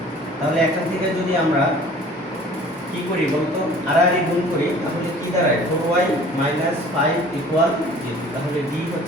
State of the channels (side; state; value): both; normal; correlation 0.48